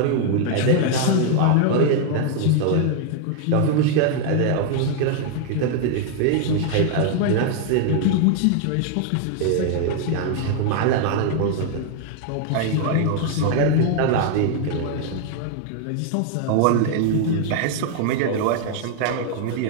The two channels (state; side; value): different; both; correlation 0.00